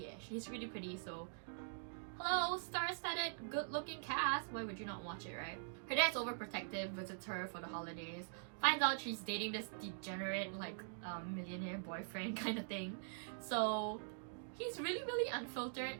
she's really pretty, so hello, star-studded, good-looking cast. Why would you not watch it, right? Her dad's overprotective, visits her for the holidays, finds out she's dating this degenerate, like, millionaire boyfriend kind of thing. So he's really, really unfiltered,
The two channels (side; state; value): left; silent; digital silence